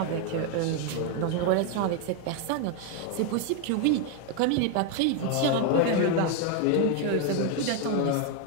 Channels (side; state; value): both; different; correlation 0.01